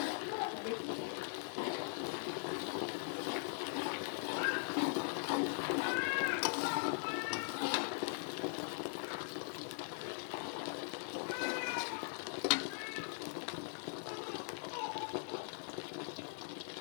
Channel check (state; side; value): silent; right; 50 dB below the other